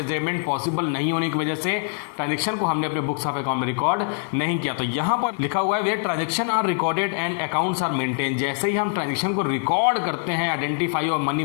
पॉसिबल नहीं होने की वजह से ट्रांजैक्शन को हमने अपने बुक्स ऑफ अकाउंट में रिकॉर्ड नहीं किया। तो यहां पर लिखा हुआ है where transaction are recorded and accounts are maintain. जैसे ही हम ट्रांजैक्शन को रिकॉर्ड करते हैं आइडेंटिफाई और मनी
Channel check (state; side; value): silent; right; 63 dB below the other